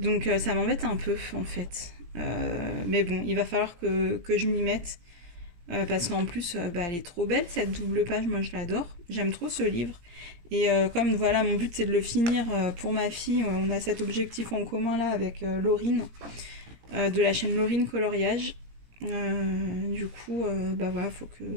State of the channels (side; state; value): left; late; 17 ms